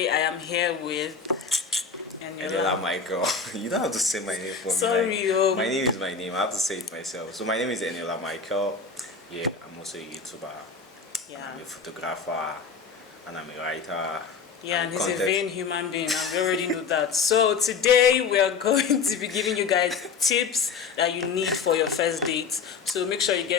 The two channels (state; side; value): quieter; right; 5.4 dB